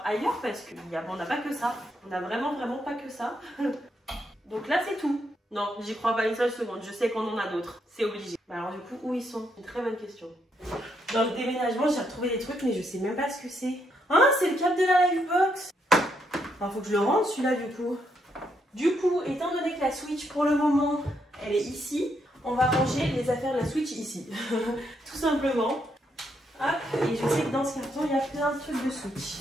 ailleurs parce qu'on n'a pas que ça. On n'a vraiment pas que ça. Donc là, c'est tout. Non, j'y crois pas une seule seconde. Je sais qu'on en a d'autres. C'est obligé. Bah alors du coup, où ils sont? Une très bonne question. Dans le déménagement, j'ai retrouvé des trucs, mais je sais même pas ce que c'est. Ah, c'est le câble de la Livebox. Alors, faut que je le rende celui-là du coup. Du coup, étant donné que la Switch pour le moment, elle est ici, on va ranger les affaires de la Switch ici. Tout simplement. Hop, et je sais que dans ce carton, il y a plein de trucs de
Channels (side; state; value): both; normal; correlation 0.77